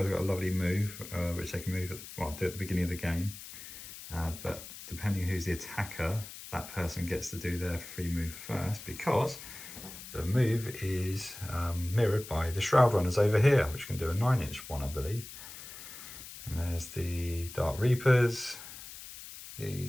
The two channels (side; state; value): left; noise; hiss, 13 dB below the sound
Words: have got a lovely move, which they can move do at the beginning of the game. But depending who's the attacker, that person gets to do their free move first, because the move is mirrored by the Shroud Runners over here, which can do a 9-inch one, I believe. And there's the Dark Reapers,